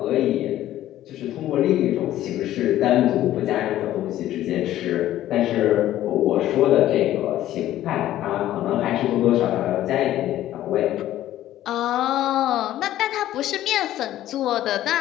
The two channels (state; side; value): quieter; right; 13.4 dB